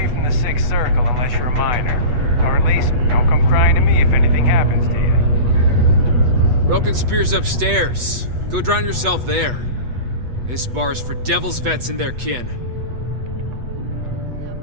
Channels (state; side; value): late; left; 8.2 ms